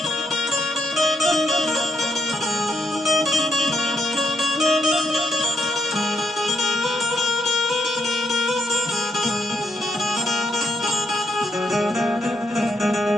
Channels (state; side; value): normal; both; correlation 0.77